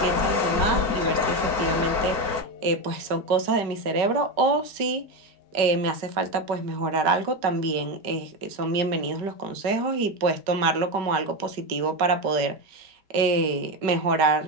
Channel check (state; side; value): late; left; 5.2 ms